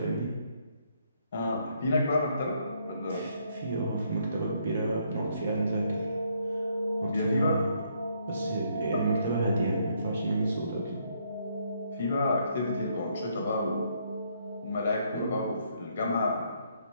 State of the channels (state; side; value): inverted; both; correlation -0.71